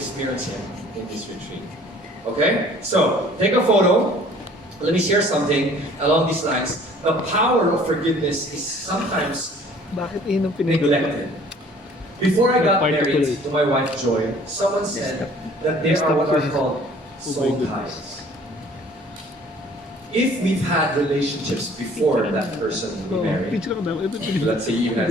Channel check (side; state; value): both; normal; correlation 0.53